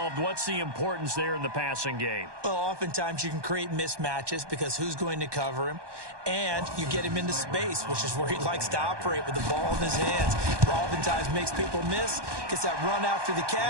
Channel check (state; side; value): late; left; 1.2 ms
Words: what's the importance there in the passing game? Well, oftentimes you can create mismatches because who's going to cover him? And you get him into space, which is where he likes to operate with the ball in his hands. Oftentimes makes people miss, gets that run after the